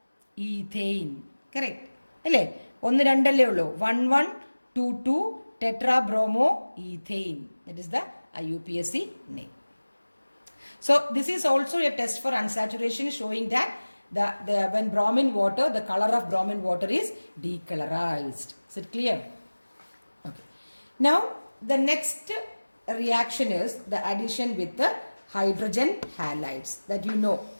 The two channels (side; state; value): both; inverted; correlation -1.00